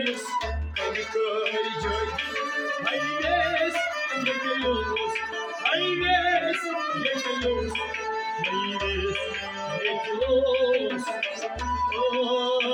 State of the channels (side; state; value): both; identical; correlation 1.00